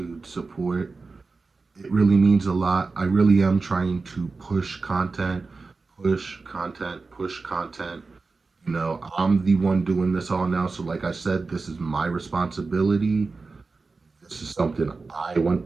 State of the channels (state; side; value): quieter; left; 4.0 dB